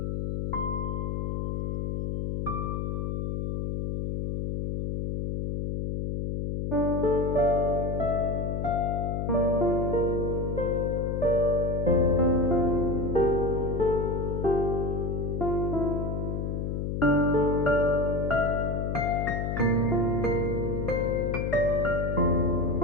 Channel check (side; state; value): left; noise; hum, 1 dB below the sound